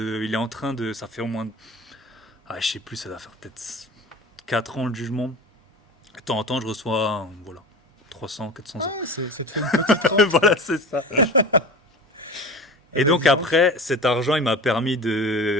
est en train de. Ça fait au moins. Ah, je sais plus, ça doit faire peut-être 4 ans le jugement. De temps en temps, je reçois voilà, 300, 400 Ah, euros. ça te fait une petite rente, Voilà, quoi. c'est ça. Eh Et ben, donc dis donc. après, cet argent, il m'a permis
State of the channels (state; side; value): normal; both; correlation 0.34